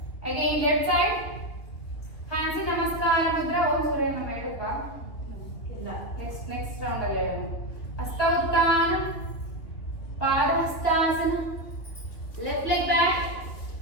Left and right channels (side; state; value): right; late; 2.9 ms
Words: Again left side, hands in namaskara mudra. Om Surya Nama ಹೇಳಪ್ಪ. ಇಲ್ಲ. Next round ಅಲ್ಲಿ ಹೇಳೋಣ. ಹಸ್ತ ಉತ್ಥಾನ, ಪಾದಹಸ್ತಾಸನ, left leg back,